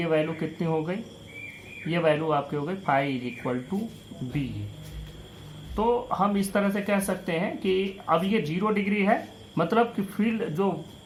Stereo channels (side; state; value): both; identical; correlation 1.00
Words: value कितनी हो गई, ये वैल्यू आपकी हो गई phi is equal to BA। तो हम इस तरह से कह सकते हैं कि अब ये 0 डिग्री है, मतलब कि फील्ड जो